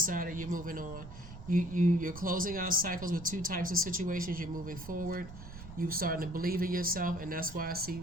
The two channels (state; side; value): noise; right; rumble, 14 dB below the sound